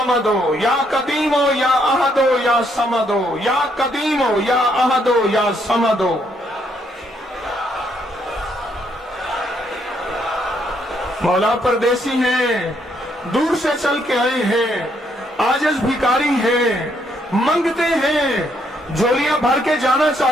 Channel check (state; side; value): normal; both; correlation 0.72